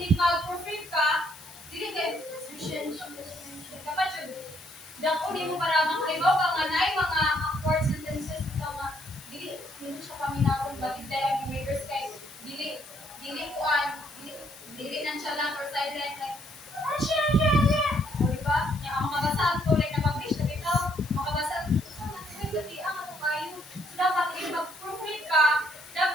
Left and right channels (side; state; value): left; noise; hiss, 19 dB below the sound